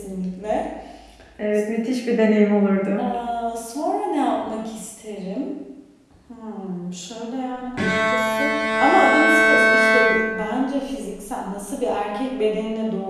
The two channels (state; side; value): identical; both; correlation 1.00